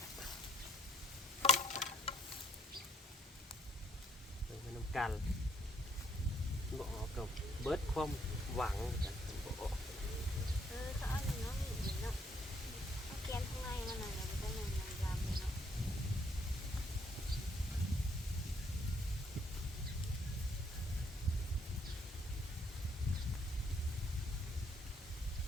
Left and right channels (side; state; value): both; normal; correlation 0.68